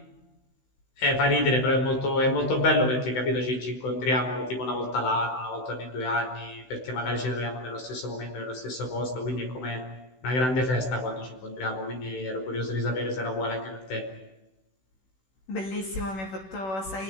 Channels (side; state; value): right; late; 16 ms